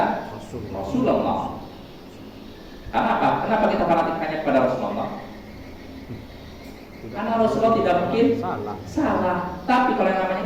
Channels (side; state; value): both; identical; correlation 1.00